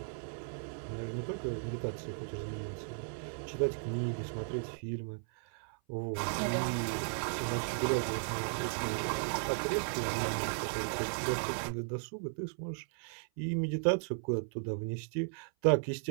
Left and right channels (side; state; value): left; silent; 54 dB below the other